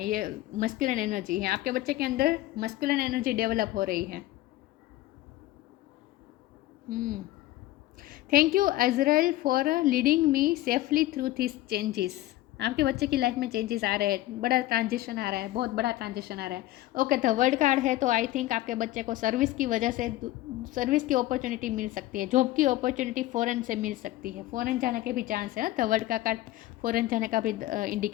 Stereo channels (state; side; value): quieter; right; 16.1 dB